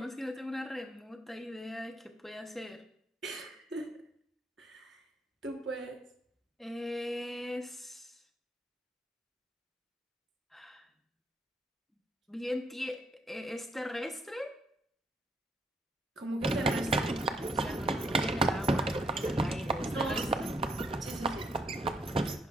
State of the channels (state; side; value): normal; both; correlation 0.72